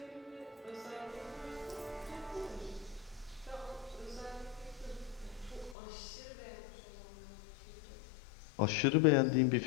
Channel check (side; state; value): right; drops out; at 5.8 s